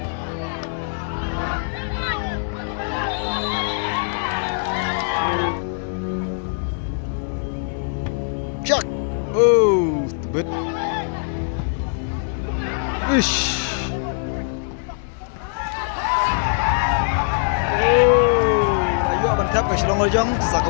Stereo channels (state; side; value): silent; right; digital silence